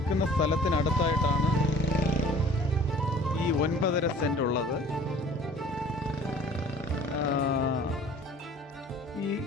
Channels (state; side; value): normal; both; correlation 0.50